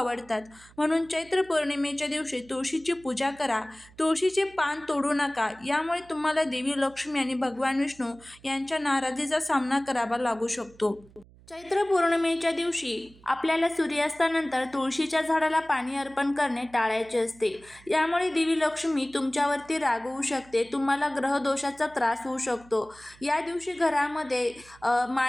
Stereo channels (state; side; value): noise; right; hum, 25 dB below the sound